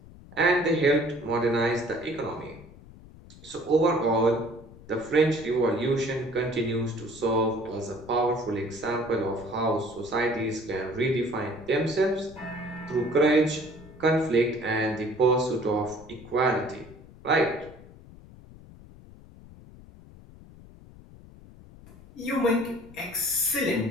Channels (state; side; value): noise; left; rumble, 20 dB below the sound